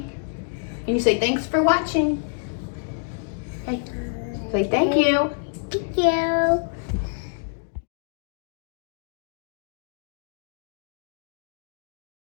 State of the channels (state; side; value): silent; right; digital silence